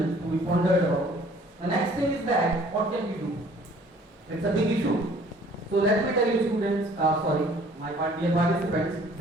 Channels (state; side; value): normal; both; correlation 0.55